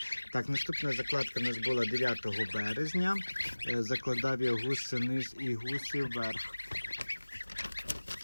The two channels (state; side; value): inverted; both; correlation -1.00